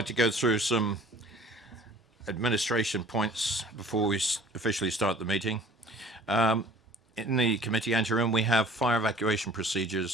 to go through some administration points before we officially start the meeting. In the committee anteroom, we have fire evacuation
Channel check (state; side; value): normal; both; correlation 0.49